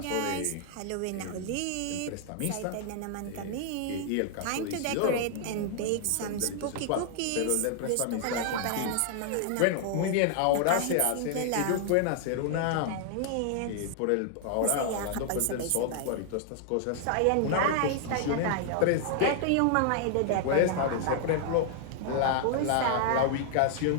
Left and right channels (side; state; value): both; different; correlation 0.00